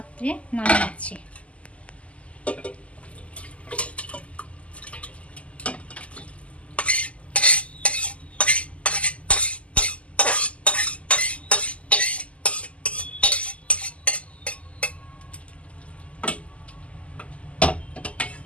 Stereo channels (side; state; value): right; late; 0.063 ms